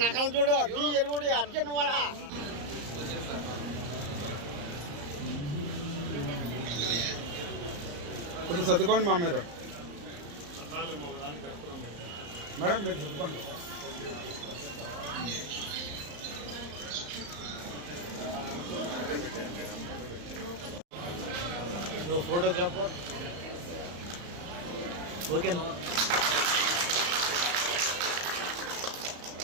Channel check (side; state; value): left; late; 34 ms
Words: నకలు చూడు ఎరుగుడి అర్జున్ వాడ కొంచెం సర్దుకోండి మా మీరు మేడం మీరు సర్దుకోండి. ఫోటోగ్రాఫర్ ఓకే